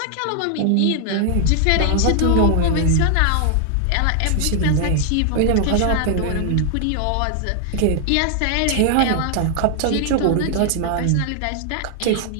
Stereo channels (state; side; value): different; both; correlation 0.00